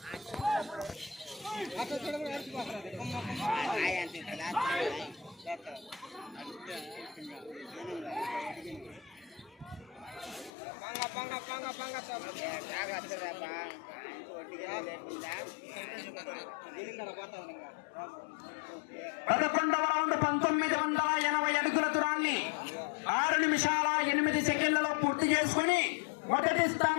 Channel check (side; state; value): right; drops out; at 10.5 s